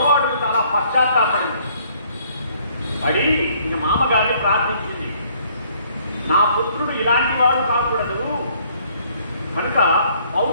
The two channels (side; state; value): both; inverted; correlation -0.62